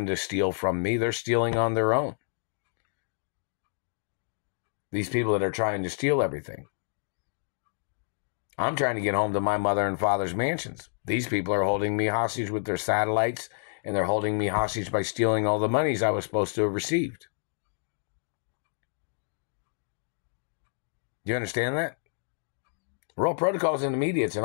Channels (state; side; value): silent; right; digital silence